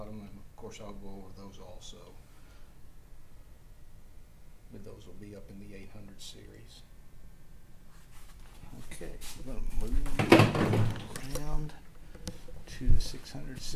and of course I'll go over those also. But those will be up in the 800 series. Okay, we're going to move around to the 600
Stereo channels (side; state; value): both; identical; correlation 1.00